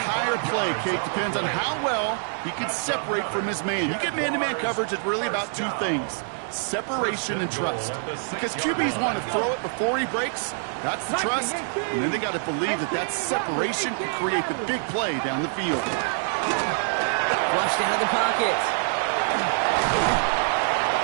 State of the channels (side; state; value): left; silent; 61 dB below the other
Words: play, Kate, depends on how well he can separate from his man. You get man-to-man coverage, it's really about two things: separation and trust. Because QBs want to throw it before he breaks. That's the trust. And then they got to believe that that separation can create the big play down the field. Flushed out of the pocket.